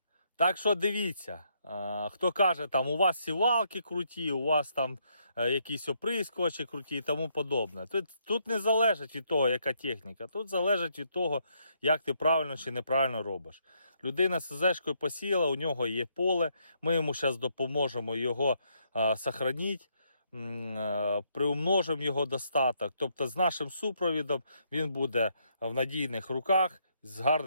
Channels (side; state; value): both; inverted; correlation -0.74